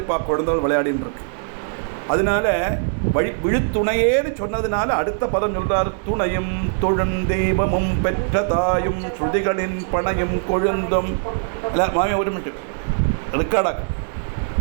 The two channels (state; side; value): silent; left; 59 dB below the other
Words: குழந்தைகள் விளையாடின்னு இருக்கு. அதனால விழுத்துணையேன்னு சொன்னதுனால அடுத்த பதம் சொல்றார். துணையும் தொழுந்தெய்வமும் பெற்ற தாயும் ஸ்ருதிகளின் பணையும் கொழுந்தும். மாமி ஒரு மினிட் ரெக்கார்டாக.